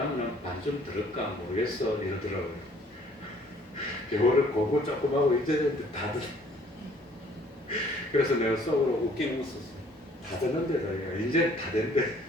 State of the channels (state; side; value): normal; both; correlation 0.58